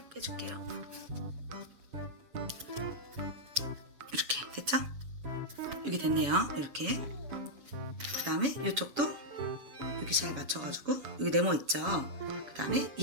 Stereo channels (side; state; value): left; late; 7.1 ms